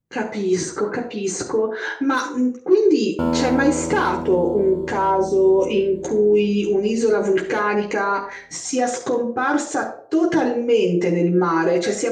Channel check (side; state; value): both; identical; correlation 1.00